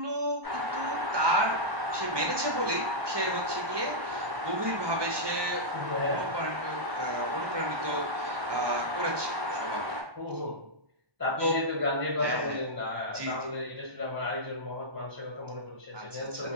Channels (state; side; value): late; left; 1.2 ms